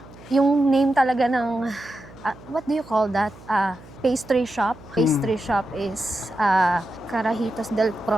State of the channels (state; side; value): noise; right; hum, 21 dB below the sound